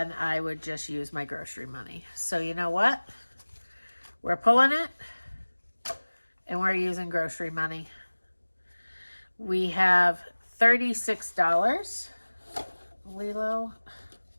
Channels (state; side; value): inverted; both; correlation -1.00